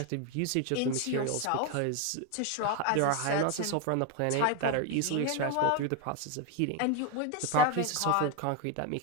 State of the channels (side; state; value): both; different; correlation 0.01